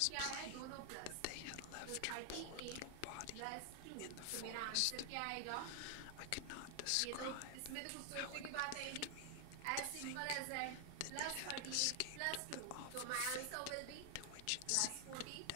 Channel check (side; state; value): both; different; correlation 0.00